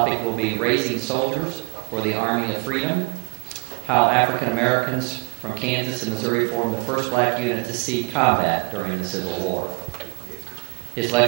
will be Raising Soldiers for the Army of Freedom, how African Americans from Kansas and Missouri formed the first black unit to see combat during the Civil War. His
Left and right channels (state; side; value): quieter; left; 33.2 dB